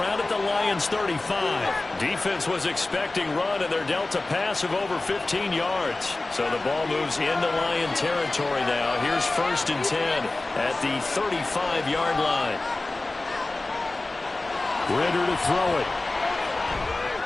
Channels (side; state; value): right; quieter; 3.0 dB